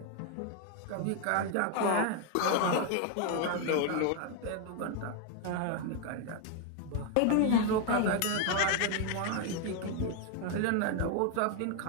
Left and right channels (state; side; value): different; both; correlation 0.01